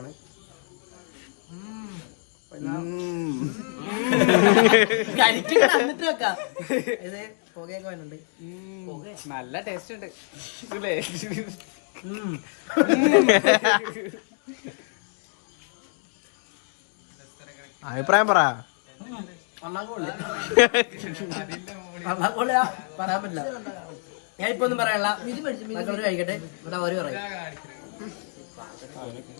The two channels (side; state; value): right; silent; 57 dB below the other